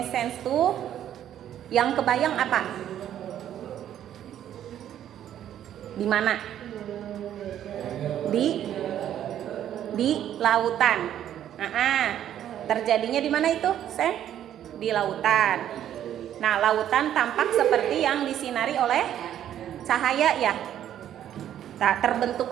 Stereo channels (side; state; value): left; quieter; 10.9 dB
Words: tuh yang kebayang apa? Di mana? Di lautan. Terjadinya di mana itu, Sen? Di lautan. Nah, lautan tampak seperti yang disinari oleh cahaya ya. Nah,